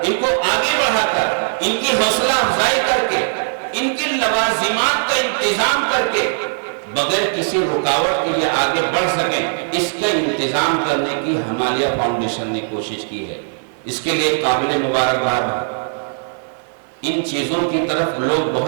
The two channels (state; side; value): silent; left; 61 dB below the other